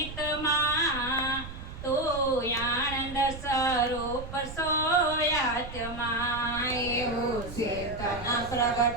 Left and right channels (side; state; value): right; noise; rumble, 11 dB below the sound